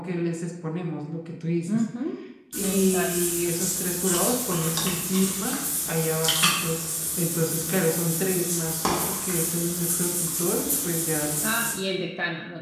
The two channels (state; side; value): identical; both; correlation 1.00